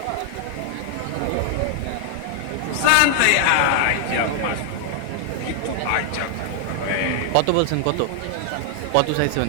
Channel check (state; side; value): different; both; correlation 0.00